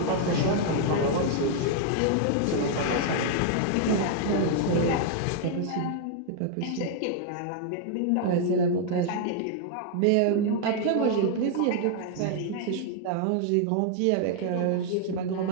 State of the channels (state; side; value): different; both; correlation 0.00